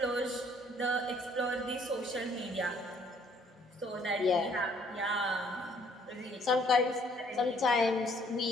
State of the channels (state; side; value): normal; both; correlation 0.62